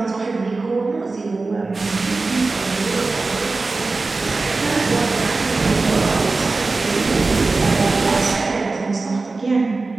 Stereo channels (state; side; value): quieter; left; 3.7 dB